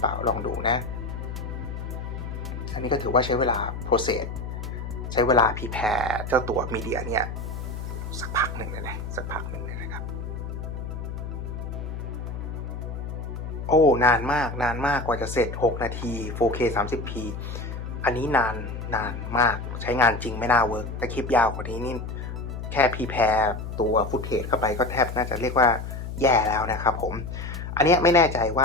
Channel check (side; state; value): left; noise; hum, 7 dB below the sound